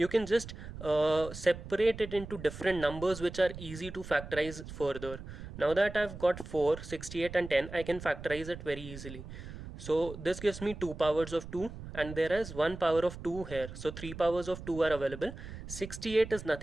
can just separate it into different numbers which are easy to factorize further. Now that I've got 4, 68 and 10, I can factorize it very easily. So this gives me 2 powers of 2, and there is 1 power of 2 here. So 3 powers of 2 are available. 68 is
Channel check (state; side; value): noise; right; rumble, 12 dB below the sound